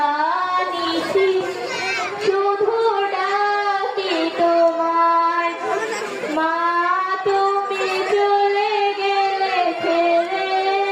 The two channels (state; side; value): identical; both; correlation 1.00